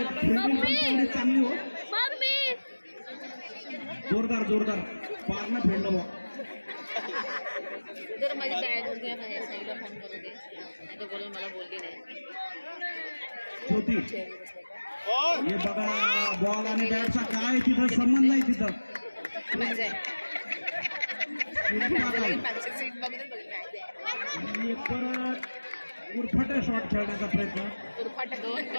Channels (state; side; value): inverted; both; correlation -1.00